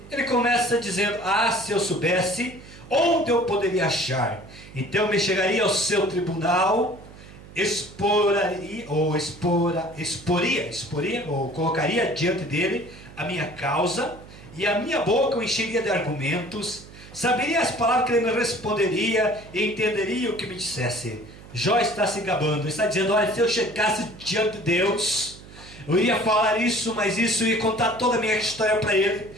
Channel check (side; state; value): right; noise; hum, 19 dB below the sound